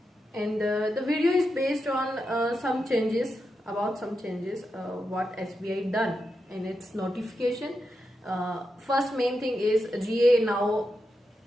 and the video is based on some changes what SBI done in its notification. First main thing is GA now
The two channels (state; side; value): normal; both; correlation 0.87